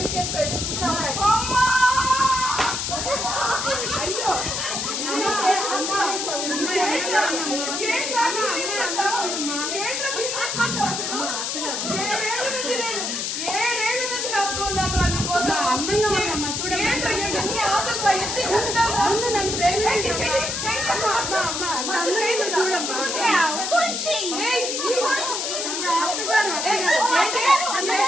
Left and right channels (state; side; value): noise; left; hiss, 2 dB below the sound